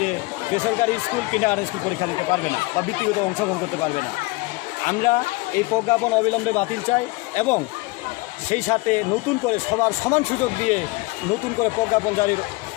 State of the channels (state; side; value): quieter; right; 24.0 dB